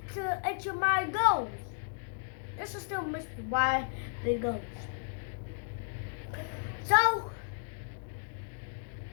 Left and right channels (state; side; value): silent; right; digital silence